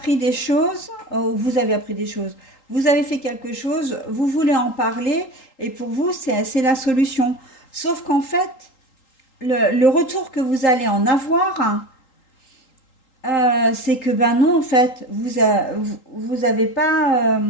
des choses, vous avez appris des choses, vous avez fait quelque chose, vous voulez en parler, et pour vous, c'est la solution. Sauf qu'en fait, le retour que vous allez en avoir, c'est que ben non, en fait, vous avez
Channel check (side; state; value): right; late; 3.8 ms